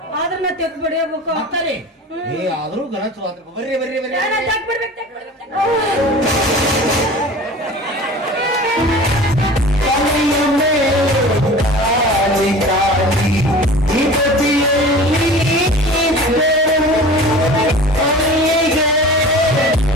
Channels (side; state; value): both; normal; correlation 0.39